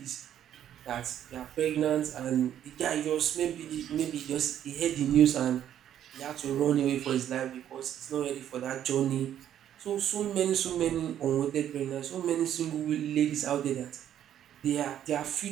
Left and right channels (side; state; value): left; quieter; 10.6 dB